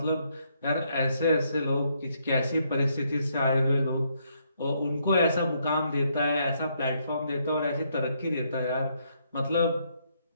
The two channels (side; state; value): both; inverted; correlation -0.73